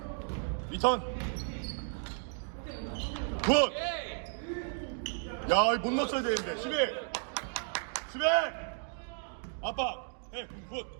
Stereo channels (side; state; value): left; silent; 55 dB below the other